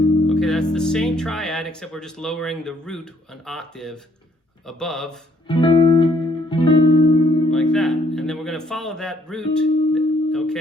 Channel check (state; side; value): normal; both; correlation 0.67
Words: that's the same triad except we're just lowering the root an octave above, like that. And then we're gonna follow that root,